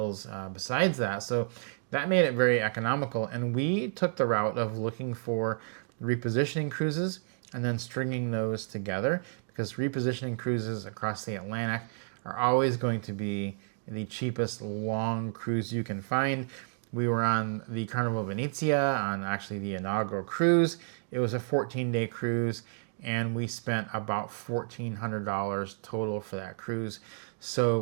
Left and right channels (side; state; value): left; silent; digital silence